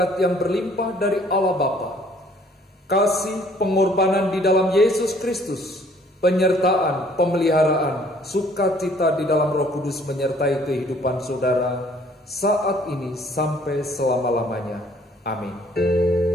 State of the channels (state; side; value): normal; both; correlation 0.59